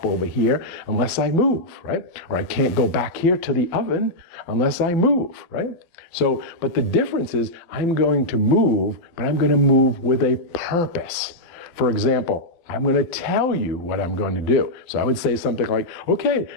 over here, unless I move, right? Or I can't go back here to the oven unless I move, right? So, but the difference is I'm going to move, but I'm going to move with a purpose. For example, I'm going to tell you what I'm going to do. So I would say something like, okay,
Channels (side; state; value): right; late; 12 ms